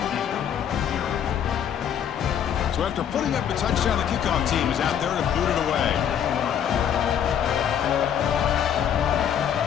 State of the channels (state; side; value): quieter; right; 9.0 dB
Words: So after putting up a touchdown, the kickoff team is out there to boot it away.